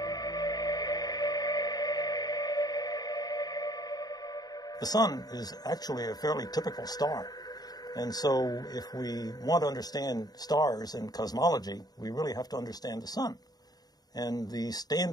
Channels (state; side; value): late; right; 0.19 ms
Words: The sun is actually a fairly typical star. And so if we want to understand stars and cosmology, we really have to understand the sun. And the